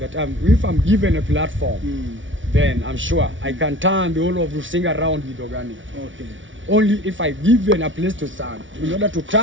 if I'm given a platform, then I'm sure I can turn the whole of Rusinga around with organic. Okay. Only if I given a place to stand in order to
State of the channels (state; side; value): late; left; 0.56 ms